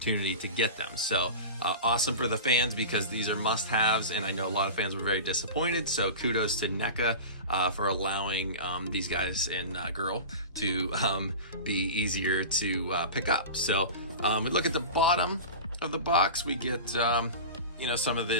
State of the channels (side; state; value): both; inverted; correlation -0.30